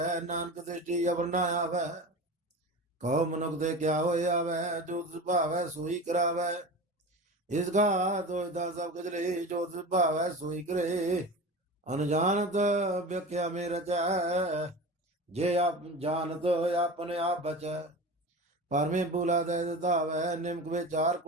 ਨਾਨਕ ਦ੍ਰਿਸ਼ਟੀ ਅਵਰ ਨਾ ਆਵੈ। ਕਹੋ ਮਨੁਖ ਤੇ ਕਿਆ ਹੋਇ ਆਵੈ, ਜੋ ਤਿਸ ਭਾਵੈ ਸੋਈ ਕਰਾਵੈ। ਇਸ ਘਾ ਦੋਇਦਾ ਸਭ ਕਜਲੇ, ਜੋ ਤਿਸ ਭਾਵੈ ਸੋਈ ਕਰੇ। ਅਨਜਾਨਤ ਵਿਖਿਆ ਮੇ ਰਚੈ, ਜੇ ਆਪ ਜਾਣਤ ਆਪਨ ਆਪ ਬਚੈ। ਪਰਮੇ ਬੂਲਾ ਦੇ ਧਾਵੈ, ਨਿਮਕ ਵਿਚਾਰ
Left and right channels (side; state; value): both; normal; correlation 0.31